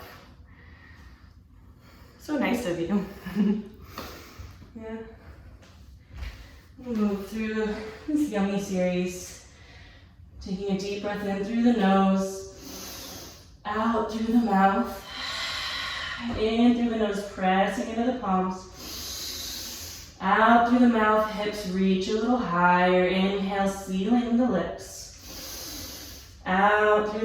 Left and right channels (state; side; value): identical; both; correlation 1.00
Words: So nice of you. Yeah. We'll move through this yummy series. Taking a deep breath in through the nose, out through the mouth, in through the nose, pressing into the palms, out through the mouth, hips reach a little higher. Inhale, sealing the lips, out